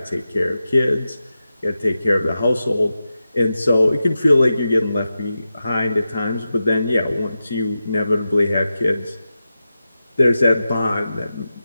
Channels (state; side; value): inverted; both; correlation -0.92